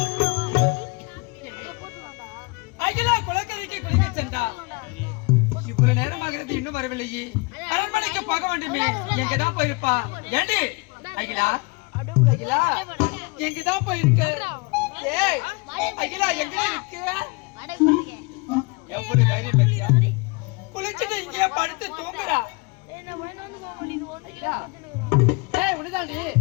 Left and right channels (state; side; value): quieter; right; 28.2 dB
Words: அரண்மனைக்கு குளிக்க சென்றா. இவ்வளவு நேரமாகிறது இன்னும் வரவில்லையே. அரண்மனைக்கு போக வேண்டுமே, எங்கதான் போயிருப்பா? ஏண்டி அகிலா, அகிலா எங்கதான் போயிருக்க? ஏய் அகிலா, எங்க இருக்கு? எவ்வளவு தைரியம் பத்தியா? குளிச்சுட்டு இங்கேயே படுத்து தூங்குறா. அகிலா, ஏய் உனதாண்டி